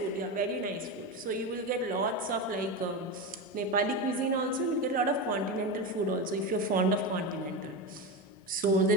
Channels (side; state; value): both; normal; correlation 0.18